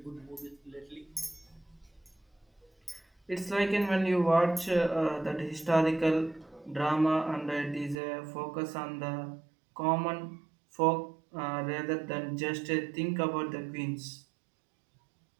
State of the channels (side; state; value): left; drops out; at 8.0 s